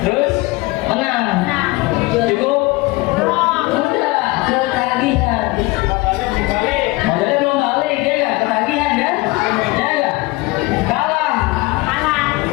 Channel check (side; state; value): right; quieter; 22.0 dB